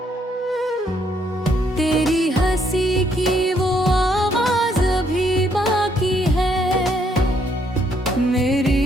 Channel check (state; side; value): normal; both; correlation 0.71